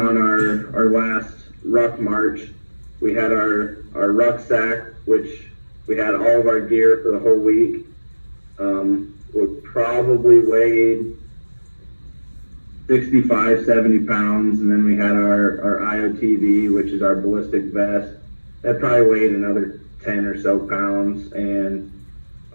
our last ruck march. We had our rucksack, which we had all of our gear for the whole week. Would probably weighed 65, 70 pounds, and then we had our IOTV, which is our ballistic vest. That probably weighed another 10 or so pounds, and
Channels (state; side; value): inverted; both; correlation -1.00